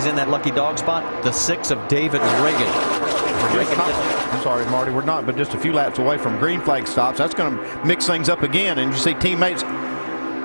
in that lucky dog spot, the 6 of David Reagan. I'm sorry, Marty, we're not but just a few laps away from green flag stops. That's going to mix things up again, and you see teammates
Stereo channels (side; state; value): both; inverted; correlation -1.00